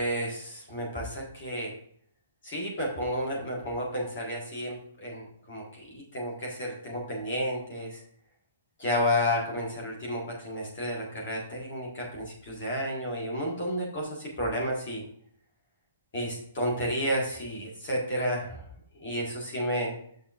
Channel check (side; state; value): both; inverted; correlation -0.47